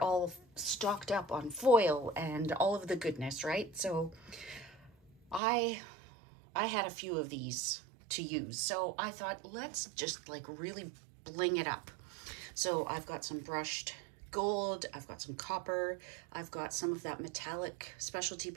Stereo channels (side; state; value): left; drops out; at 5.4 s